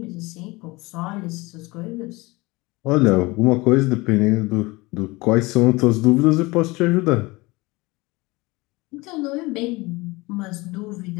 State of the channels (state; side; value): quieter; right; 23.0 dB